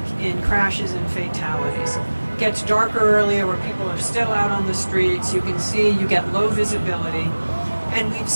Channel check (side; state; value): both; inverted; correlation -1.00